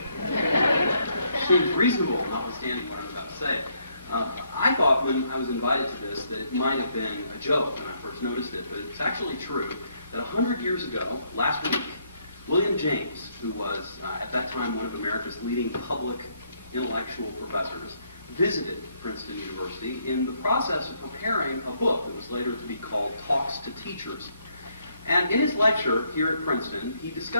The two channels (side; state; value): both; inverted; correlation -0.71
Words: Seems reasonable, notwithstanding what I'm about to say. I thought when I was invited to this that it might have been a joke when I first noticed it, but it's actually true that 100 years ago, last week, William James, who was at that time one of America's leading public intellectual professors, visited Princeton University in the process of preparing a book that was later to be called Talks to Teachers. And in his lecture here at Princeton, he